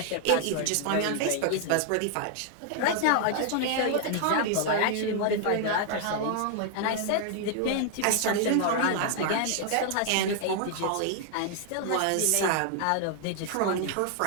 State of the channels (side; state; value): both; different; correlation 0.00